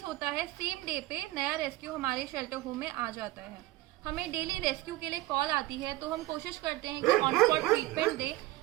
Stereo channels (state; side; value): quieter; left; 18.1 dB